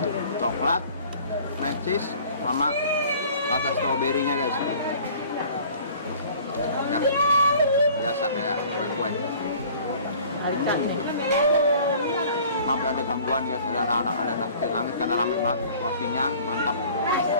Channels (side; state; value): both; inverted; correlation -0.49